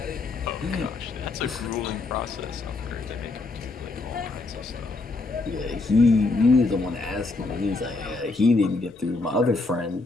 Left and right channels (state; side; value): quieter; right; 3.5 dB